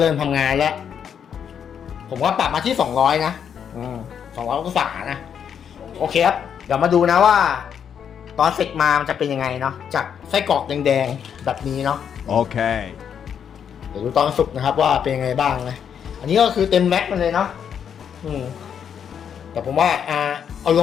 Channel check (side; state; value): right; quieter; 8.0 dB